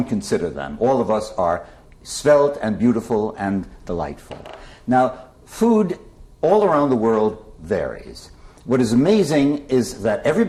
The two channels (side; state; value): both; identical; correlation 1.00